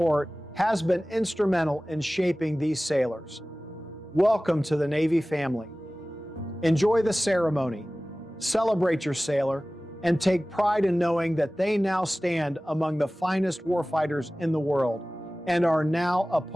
has been instrumental in shaping these sailors. Welcome to the Navy family. Enjoy the ceremony, celebrate your sailor, and take pride in knowing that they now stand among the finest warfighters in the world and are now a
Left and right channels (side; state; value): both; normal; correlation 0.97